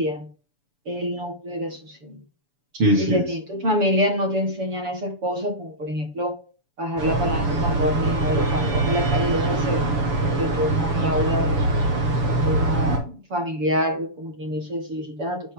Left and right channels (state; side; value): late; left; 7.0 ms